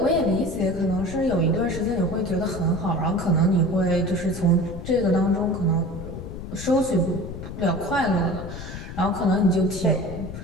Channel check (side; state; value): left; noise; rumble, 9 dB below the sound